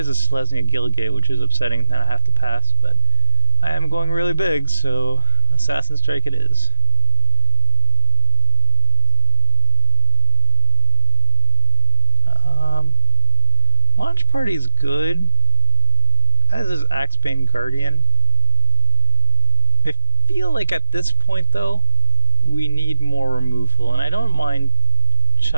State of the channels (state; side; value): inverted; both; correlation -0.72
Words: a Selesnya Gilgate, which is upsetting that I have to pass, but I am going really big, so Assassin Strike it is. Launch Party's good, as is Axebane Guardian. I feel like at this point though, we need more removal, and I don't mind